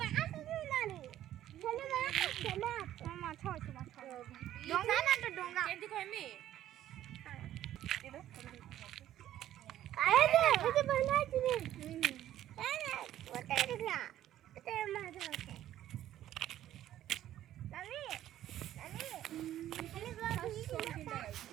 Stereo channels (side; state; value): left; quieter; 12.5 dB